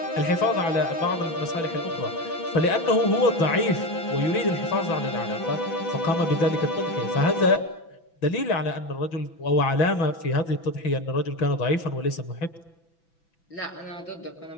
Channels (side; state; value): right; late; 6.0 ms